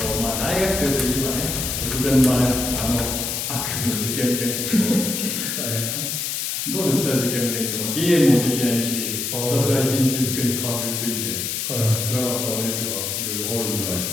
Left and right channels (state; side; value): noise; left; hiss, 2 dB below the sound